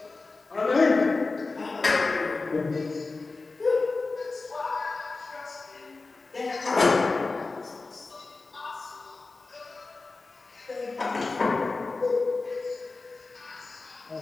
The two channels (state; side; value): quieter; right; 3.7 dB